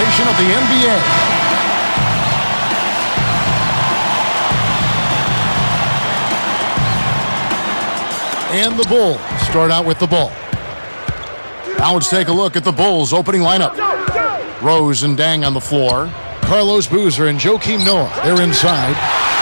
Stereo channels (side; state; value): both; inverted; correlation -1.00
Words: of the NBA. And the Bulls start out with the ball. Now let's take a look at the Bulls' opening lineup. Rose and Dang on the floor. Carlos Boozer and Joakim Noah, they're inside.